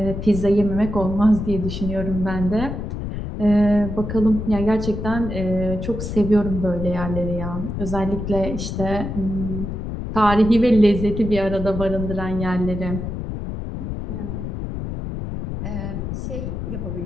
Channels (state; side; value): noise; left; rumble, 5 dB below the sound